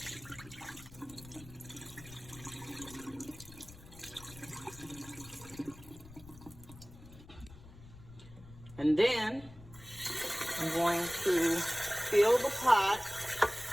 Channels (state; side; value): noise; left; rumble, 18 dB below the sound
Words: And then I'm going to fill the pot